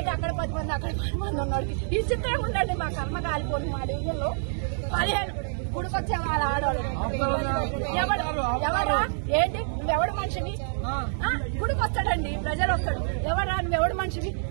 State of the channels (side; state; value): left; silent; digital silence